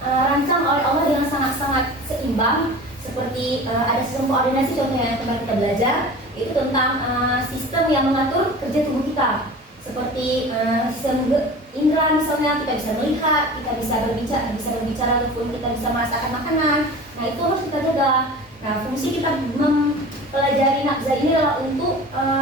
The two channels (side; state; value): both; normal; correlation 0.38